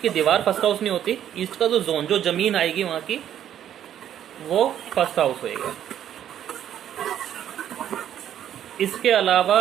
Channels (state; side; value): quieter; left; 10.4 dB